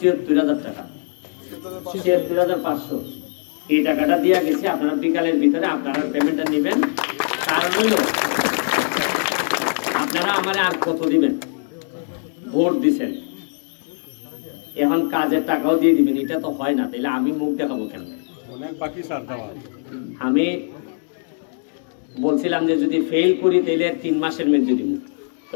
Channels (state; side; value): silent; right; digital silence